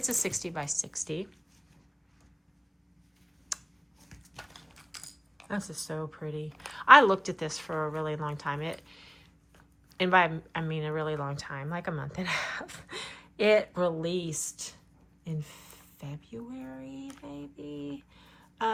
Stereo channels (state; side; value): identical; both; correlation 1.00